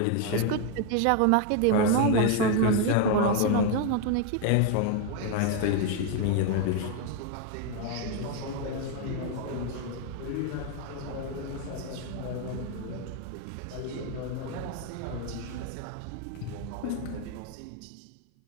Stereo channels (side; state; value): both; different; correlation 0.01